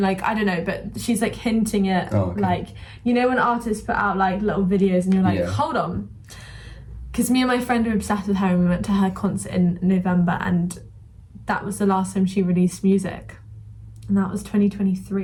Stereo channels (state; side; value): identical; both; correlation 1.00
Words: like, I don't know, but she's like hinting at, okay. like, you know when artists put out like little videos and you're like, hold on. Because me and my friend were obsessed with her and we went to her concert in November and that was the last time she released music. And that was